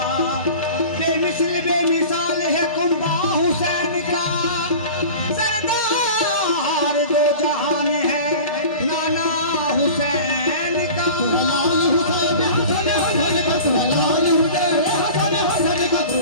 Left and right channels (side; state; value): both; inverted; correlation -0.38